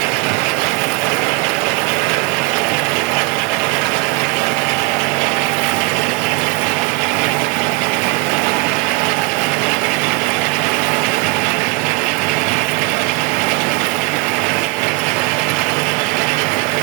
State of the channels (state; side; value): quieter; left; 25.5 dB